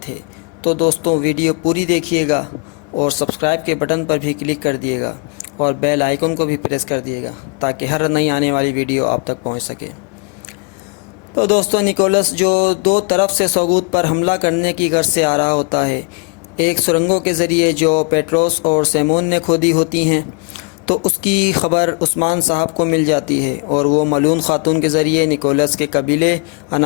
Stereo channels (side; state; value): right; quieter; 35.1 dB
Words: تھے۔ تو دوستو ویڈیو پوری دیکھیے گا اور سبسکرائب کے بٹن پر بھی کلک کر دیے گا اور بیل آئیکن کو بھی پریس کر دیے گا تاکہ ہر نئی آنے والی ویڈیو آپ تک پہنچ سکے۔ تو دوستو نکولس جو دو طرف سے سوگوت پر حملہ کرنے کی غرض سے آ رہا ہوتا ہے، ایک سرنگوں کے ذریعے جو پیٹروس اور سیمون نے کھودی ہوتی ہیں، تو اس کی خبر عثمان صاحب کو مل جاتی ہے اور وہ ملون خاتون کے ذریعے نکولس کے قبیلے